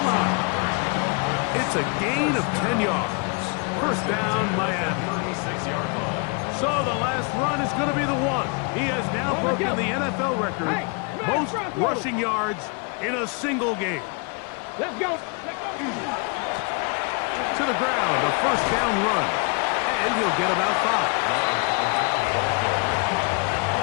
line. It's a gain of 10 yards. First down, Miami. So the last run is going to be the one. He has now broken the NFL record, most rushing yards in a single game. Let's go. To the ground, a first down run. And he'll get about 5.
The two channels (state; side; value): quieter; right; 34.3 dB